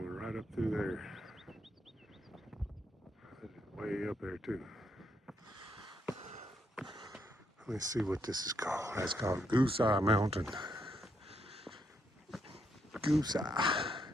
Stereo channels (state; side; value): normal; both; correlation 0.77